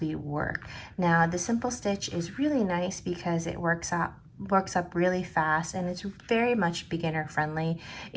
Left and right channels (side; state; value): both; identical; correlation 1.00